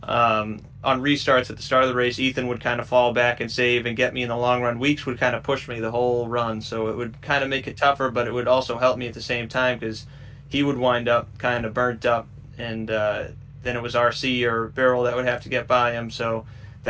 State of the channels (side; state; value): both; identical; correlation 1.00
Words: On restarts at the start of the race, Ethan would kind of fall back and save and get me in the long run. Weeks would kind of push me the whole run, so it would kind of make it tougher, but it would also help me at the same time because he would wind up kind of burnt up, and then it was RC or Beryl that would have to get by him, so